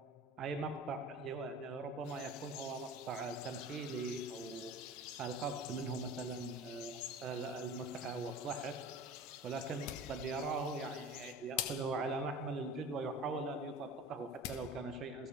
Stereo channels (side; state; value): both; normal; correlation 0.38